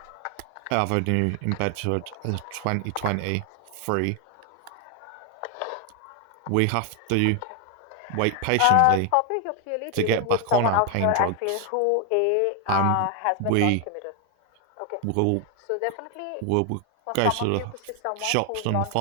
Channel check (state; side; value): different; both; correlation 0.00